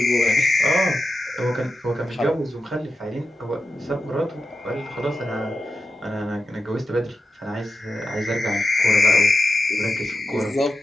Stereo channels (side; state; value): both; normal; correlation 0.90